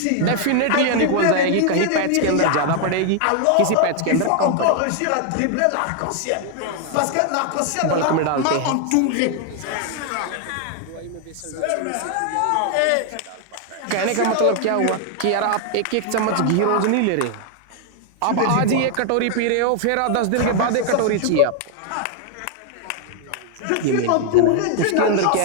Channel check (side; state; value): both; different; correlation 0.00